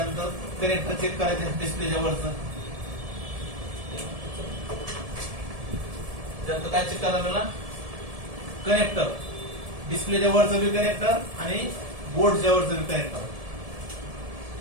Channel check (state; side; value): late; left; 1.7 ms